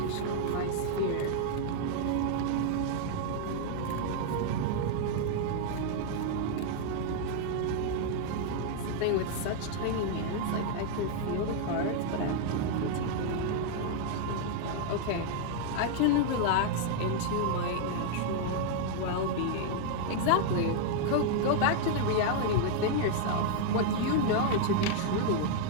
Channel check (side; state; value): both; different; correlation 0.00